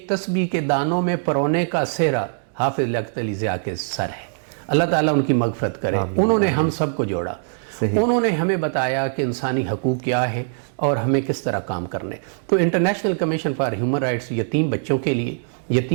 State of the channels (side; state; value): left; silent; digital silence